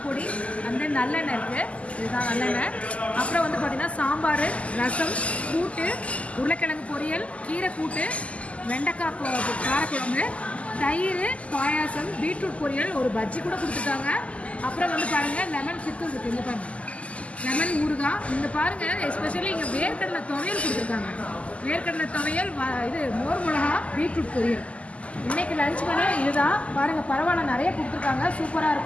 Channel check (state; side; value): late; right; 0.064 ms